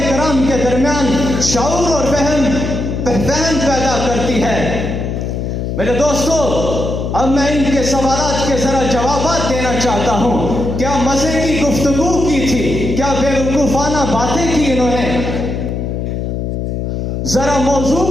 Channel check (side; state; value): left; noise; hum, 3 dB below the sound